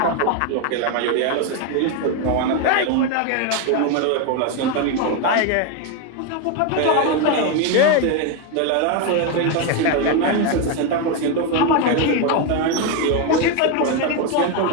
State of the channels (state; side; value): different; both; correlation 0.02